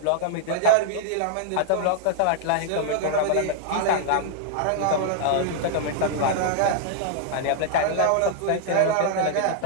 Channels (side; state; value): both; different; correlation -0.01